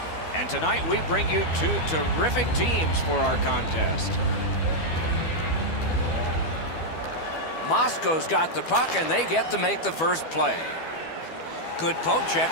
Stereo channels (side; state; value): right; late; 12 ms